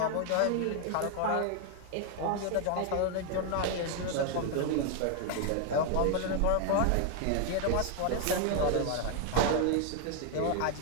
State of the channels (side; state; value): both; different; correlation 0.01